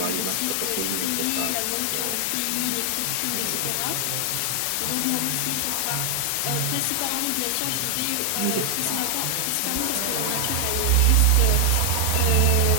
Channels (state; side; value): different; both; correlation 0.00